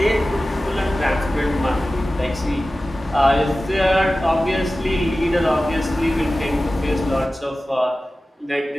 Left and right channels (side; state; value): both; normal; correlation 0.95